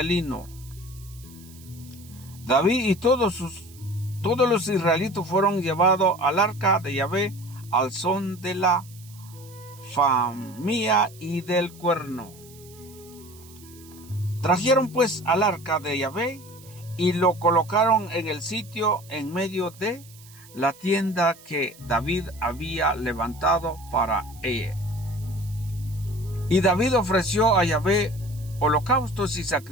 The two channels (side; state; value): right; noise; hiss, 22 dB below the sound